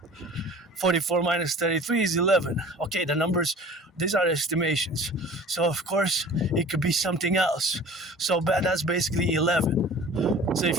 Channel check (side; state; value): both; normal; correlation 0.44